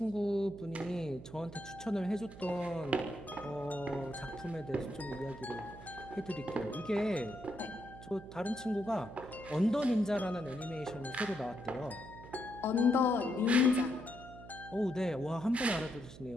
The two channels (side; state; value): right; noise; hum, 15 dB below the sound